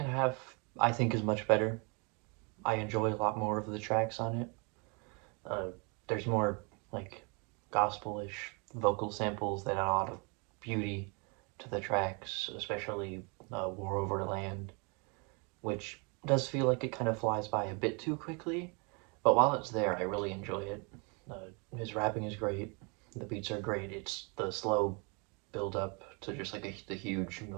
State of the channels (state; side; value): quieter; left; 33.0 dB